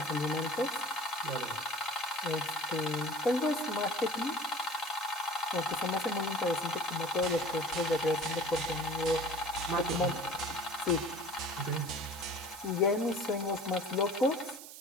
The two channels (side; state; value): right; noise; hiss, 13 dB below the sound